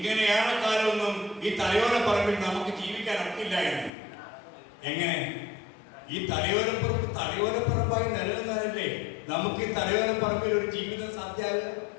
ഏറെക്കാലമൊന്നും ഈ തലയോലപ്പറമ്പിൽ നമുക്ക് ജീവിക്കാൻ ഒക്കില്ല എന്ന്. എങ്ങനെ? ഈ തലയോലപ്പറമ്പായി നിലനിന്നാലല്ലേ നമുക്ക് ഈ തലയോലപ്പറമ്പിൽ ഒരു ജീവിതം സാധ്യമാകുക.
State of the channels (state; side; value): drops out; right; at 3.9 s